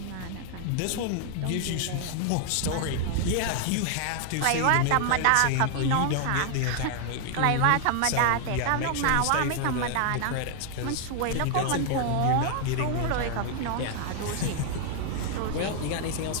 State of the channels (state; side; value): different; both; correlation 0.00